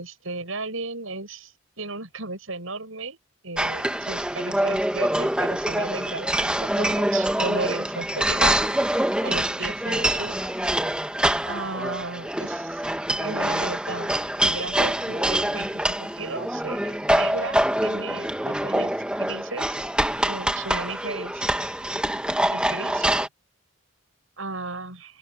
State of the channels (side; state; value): both; normal; correlation 0.72